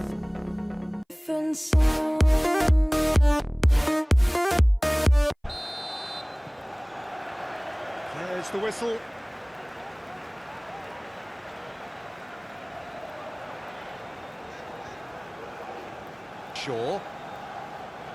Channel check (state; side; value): identical; both; correlation 1.00